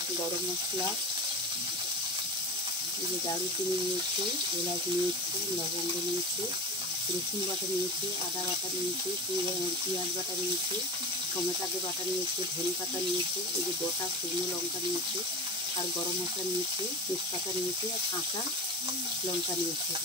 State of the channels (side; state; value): both; normal; correlation 0.28